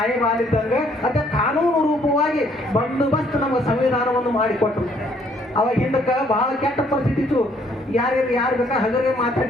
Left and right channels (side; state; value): both; normal; correlation 0.65